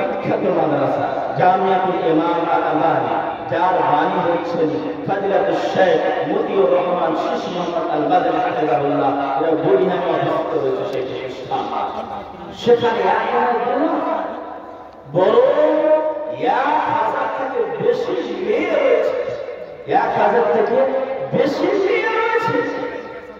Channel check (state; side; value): identical; both; correlation 1.00